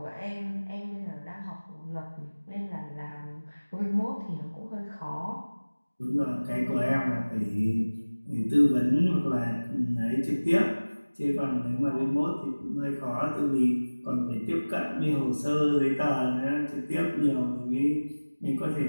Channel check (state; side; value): inverted; both; correlation -1.00